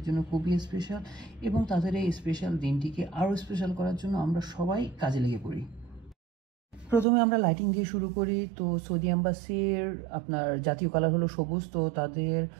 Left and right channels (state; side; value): drops out; left; at 7.1 s